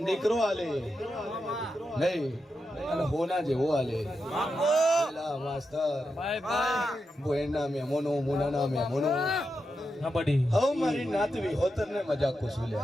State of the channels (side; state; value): both; normal; correlation 0.87